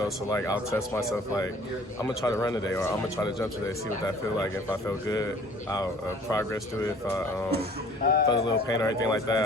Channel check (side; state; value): both; normal; correlation 0.52